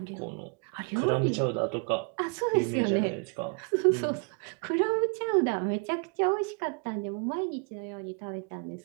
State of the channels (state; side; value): quieter; left; 37.7 dB